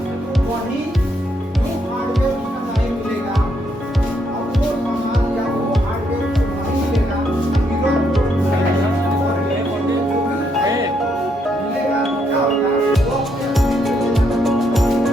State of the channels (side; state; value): both; normal; correlation 0.75